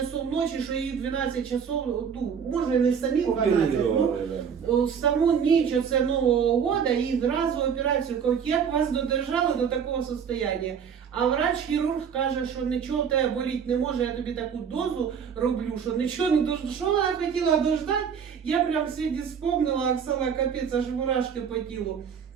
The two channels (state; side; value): quieter; left; 7.2 dB